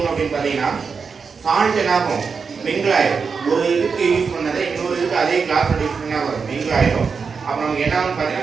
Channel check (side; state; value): left; quieter; 5.5 dB